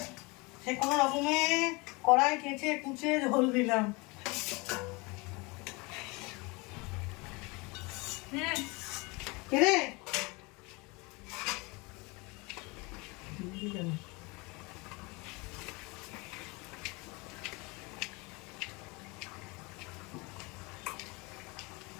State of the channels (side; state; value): right; quieter; 26.7 dB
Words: সে কোনো রকমে কড়াই কেচে কুচে ঝোল দিলাম। রে